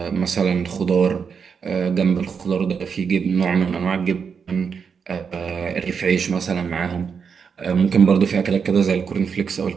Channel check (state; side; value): quieter; left; 6.3 dB